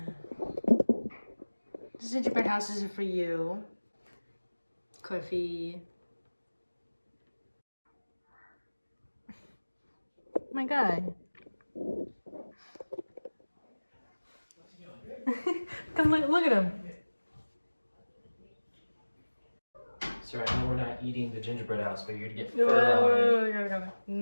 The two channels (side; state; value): both; inverted; correlation -1.00